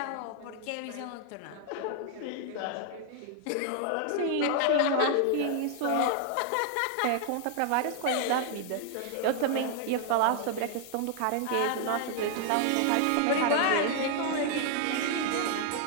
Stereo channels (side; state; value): both; different; correlation 0.00